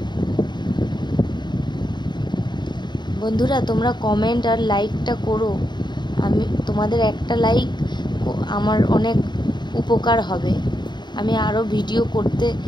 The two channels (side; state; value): right; late; 0.21 ms